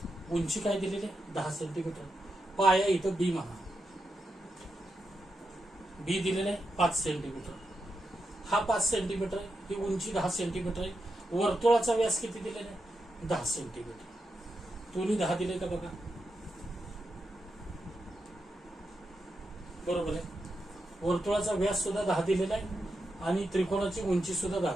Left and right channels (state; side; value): normal; both; correlation 0.86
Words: उंची काय दिलेली आहे? 10 सेंटीमीटर. पाया इथं बी म्हणा. बी दिलेला आहे 5 सेंटीमीटर. हा 5 सेंटीमीटर आहे. ही उंची 10 सेंटीमीटर आहे. वर्तुळाचा व्यास किती दिलेला आहे? 10 सेंटीमीटर. दोन्ही 10 दिले का बघा. बरोबर आहे. वर्तुळाचा व्यास सुद्धा 10 दिलेला आहे आणि त्रिकोणाची उंची सुद्धा 10